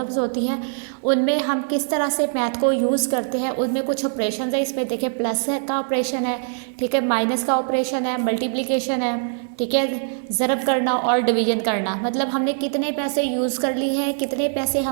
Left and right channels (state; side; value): silent; left; 64 dB below the other